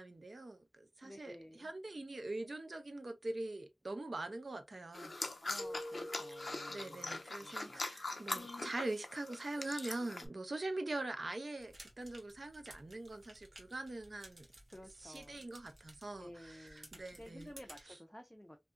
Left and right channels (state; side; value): normal; both; correlation 0.95